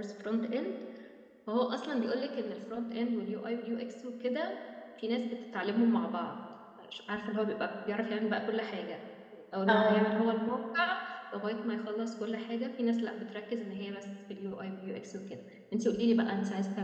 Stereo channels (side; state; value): both; identical; correlation 1.00